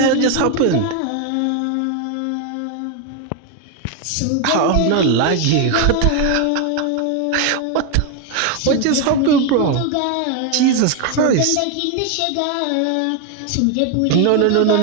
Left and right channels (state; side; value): different; both; correlation 0.01